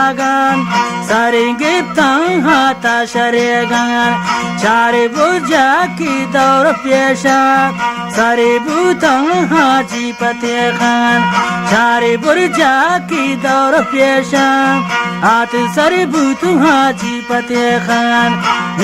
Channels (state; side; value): identical; both; correlation 1.00